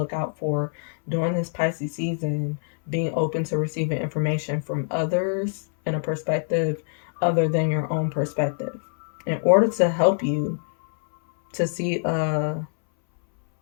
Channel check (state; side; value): silent; right; 62 dB below the other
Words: out for during this Pisces season, being open to receiving information from others in a perspective other than your own perspective, in order to help you to see a